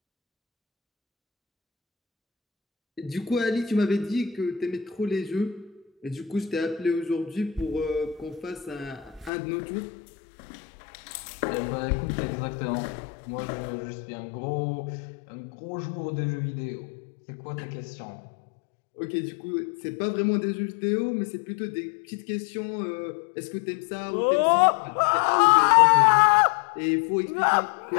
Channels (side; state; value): right; drops out; at 9.3 s